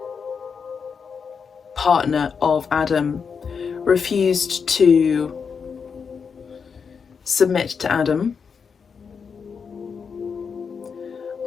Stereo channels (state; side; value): quieter; right; 6.0 dB